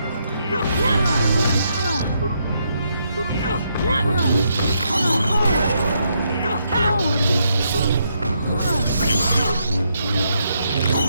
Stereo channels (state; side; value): inverted; both; correlation -0.77